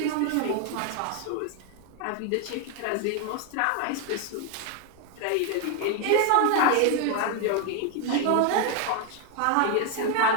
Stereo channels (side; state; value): both; different; correlation 0.01